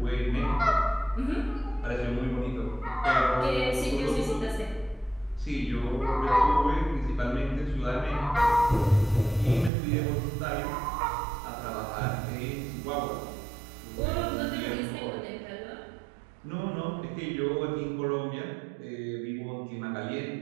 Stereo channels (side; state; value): left; drops out; at 9.7 s